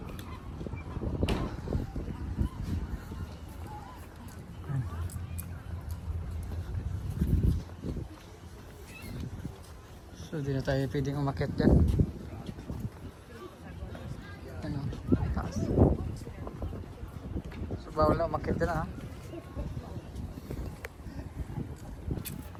Yan. So di na tayo pwedeng umakyat dyan. Yan, oh. Taas. So bawal na umakyat dyan, ha.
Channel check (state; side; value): identical; both; correlation 1.00